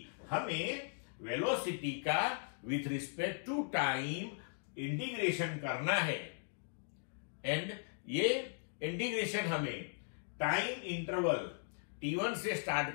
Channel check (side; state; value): right; silent; digital silence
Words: हमें वेलोसिटी का with respect to time integration करना है, एंड ये इंटीग्रेशन हमें टाइम इंटरवल T1 से स्टार्ट